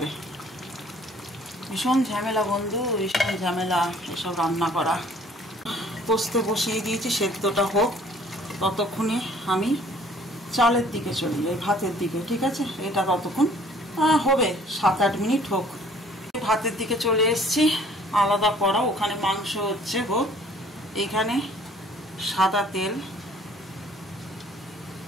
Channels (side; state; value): both; normal; correlation 0.56